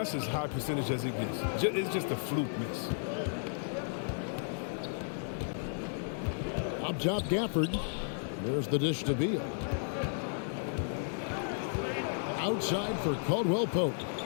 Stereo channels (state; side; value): silent; right; digital silence